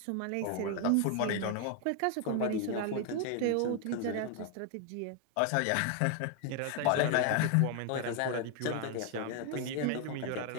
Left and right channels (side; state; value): both; different; correlation 0.00